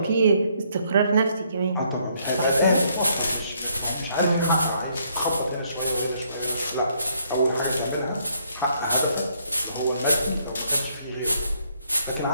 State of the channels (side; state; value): both; inverted; correlation -0.69